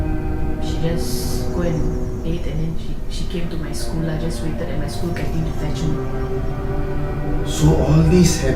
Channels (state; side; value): identical; both; correlation 1.00